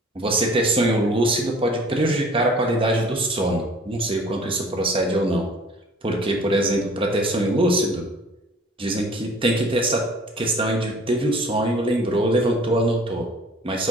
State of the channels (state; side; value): normal; both; correlation 0.50